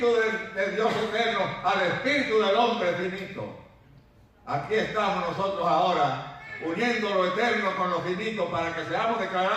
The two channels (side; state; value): both; identical; correlation 1.00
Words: de Dios eterno al Espíritu del hombre finito. Aquí estamos nosotros ahora, uniendo lo eterno con lo finito para que seamos